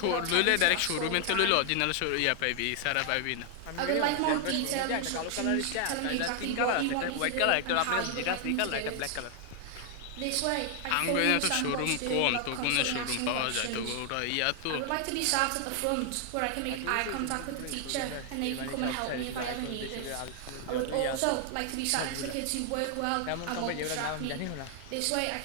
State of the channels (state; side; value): different; both; correlation 0.00